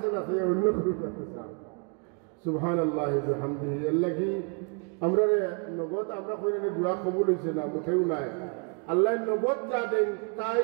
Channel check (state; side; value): quieter; left; 37.8 dB